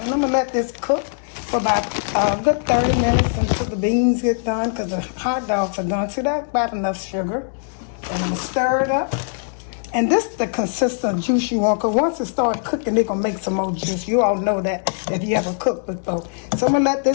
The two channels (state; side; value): silent; right; digital silence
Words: And I'm gonna let this cook for about a good 30 minutes until the beans get done, because the hot dogs are done. So that's about enough sugar. And I'm gonna stir it up. And this is the consistent juice you want, because once it starts cooking, they're gonna make some more juice. You all know that if you ever cooked before. So I'm gonna let